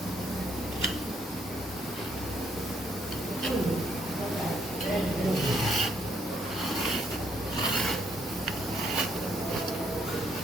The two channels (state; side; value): normal; both; correlation 0.71